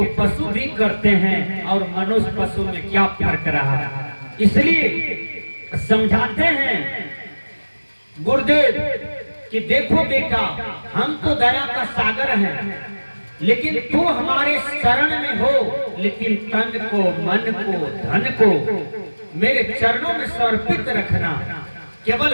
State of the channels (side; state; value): both; inverted; correlation -1.00